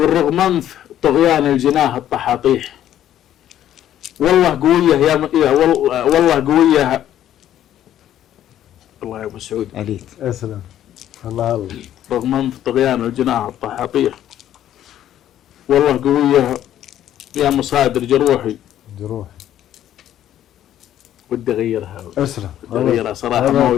رغم أنف طغيان الجناه الطحاطيح، والله قوية يا والله قوية. الله يا أبو سعود. عليك. يا سلام. الله. رغم أنف طغيان الجناه الطحاطيح، والله قوية يا مصادر جروحي. ودي أغيرها. أسلم. ودي أغيرها صراحة، ما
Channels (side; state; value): right; quieter; 11.6 dB